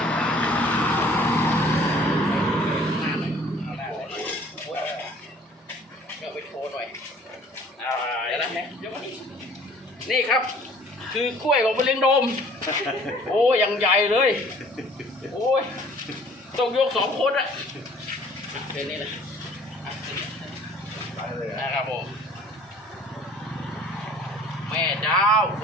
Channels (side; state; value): both; normal; correlation 0.53